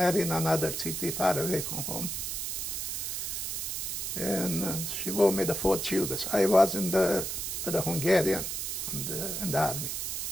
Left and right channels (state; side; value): noise; right; hiss, 3 dB below the sound